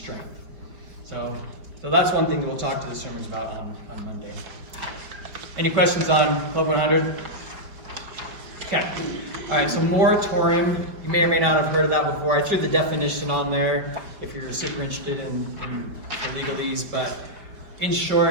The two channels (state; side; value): late; left; 5.1 ms